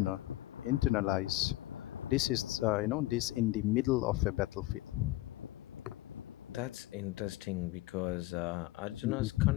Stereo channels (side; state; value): right; quieter; 17.8 dB